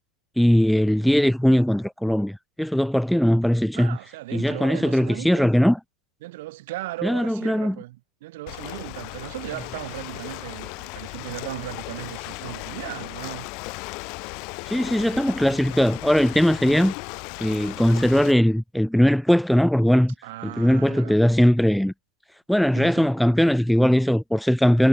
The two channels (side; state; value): both; normal; correlation 0.97